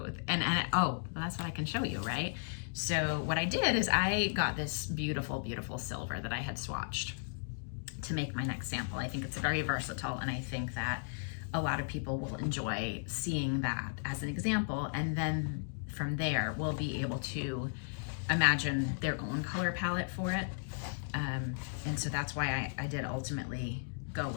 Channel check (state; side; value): silent; right; digital silence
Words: And oh, well, that's what I can show you, right? So what I did is I got this beautiful, beautiful silver that I had swatched to make my next sample. I think it's very versatile, and I think that a lot of people will enjoy seeing that as an example, and then from there we'll be able to imagine their own color palette for it. And so that's why I did ultimately go